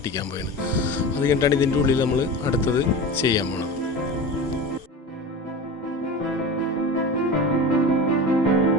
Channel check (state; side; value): normal; both; correlation 0.29